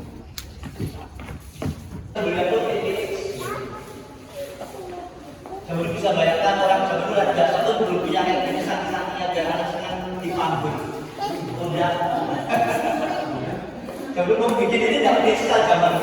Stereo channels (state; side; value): identical; both; correlation 1.00